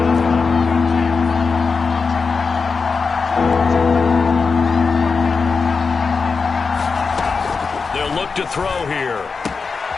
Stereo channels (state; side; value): quieter; right; 4.8 dB